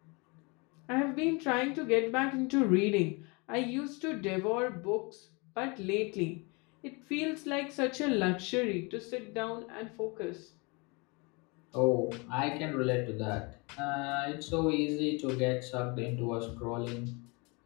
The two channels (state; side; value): quieter; right; 29.3 dB